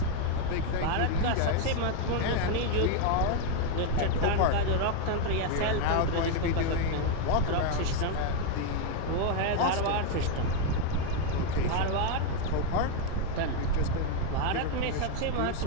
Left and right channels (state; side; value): different; both; correlation 0.01